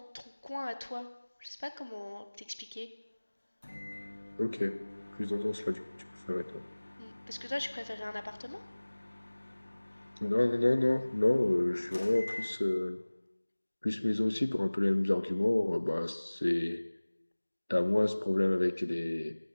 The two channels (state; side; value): inverted; both; correlation -1.00